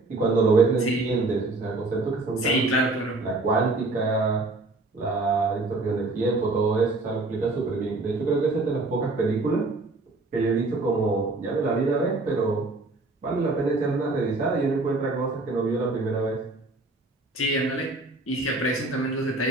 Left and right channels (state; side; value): quieter; left; 3.1 dB